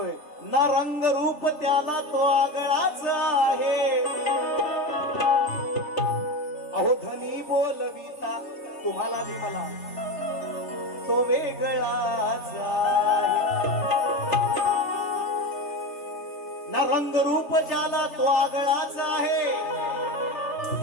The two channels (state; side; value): late; right; 3.4 ms